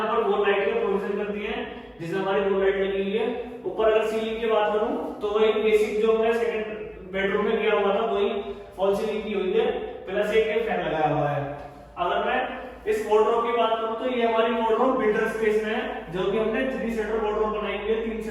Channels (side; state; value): both; identical; correlation 1.00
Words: पर वॉल लाइट का प्रोविजन कर दिए हैं, जिसमें हमारी वॉल लाइट लगी हुई है। ऊपर अगर सीलिंग की बात करूं तो वही बेसिक जो हमने सेकंड बेडरूम में किया हुआ था वही फॉल सीलिंग की हुई है, प्लस एक फैन लगाया हुआ है। अगर मैं इस वार्डरोब की बात करूं तो ये हमारी वार्डरोब बिल्डर स्पेस में है, जो कि हमने 3 शटर वार्डरोब बनाई हुई है, 3